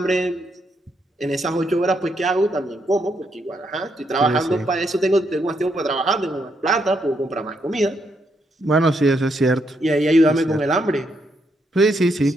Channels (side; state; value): both; normal; correlation 0.77